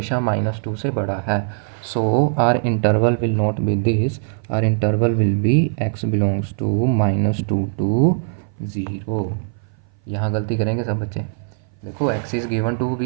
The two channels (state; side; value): silent; left; 59 dB below the other